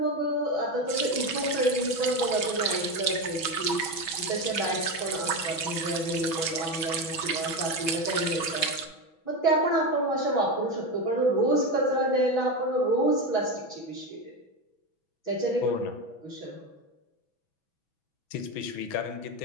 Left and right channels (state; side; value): late; right; 6.1 ms